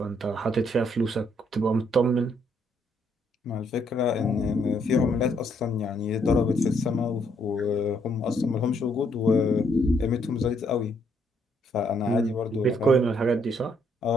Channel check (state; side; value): normal; both; correlation 0.71